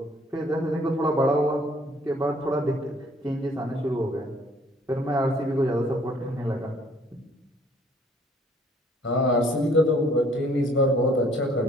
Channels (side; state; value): both; normal; correlation 0.60